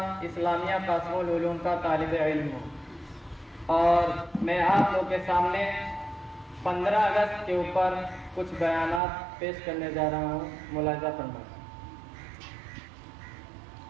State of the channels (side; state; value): left; drops out; at 9.0 s